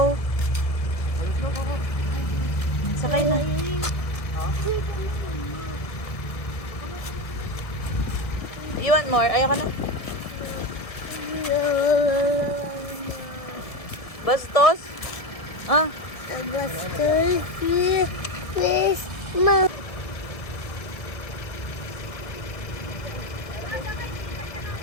Sakay na. You want more? Ayaw ka na? Bastos? Ah, Please, Mom.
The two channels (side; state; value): right; late; 1.7 ms